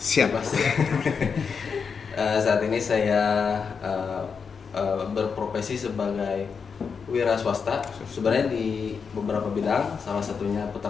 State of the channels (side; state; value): right; quieter; 5.9 dB